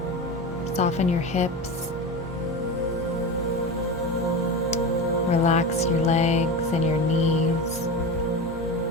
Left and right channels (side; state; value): both; normal; correlation 0.24